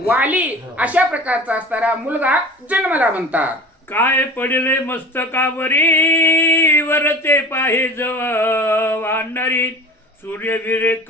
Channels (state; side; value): normal; both; correlation 0.38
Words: वाली अशा प्रकारचा असणारा मुलगा जन्मला म्हणतात. काय पडले मस्तकावरी वरते पाहे जव वानरी सूर्यवीरे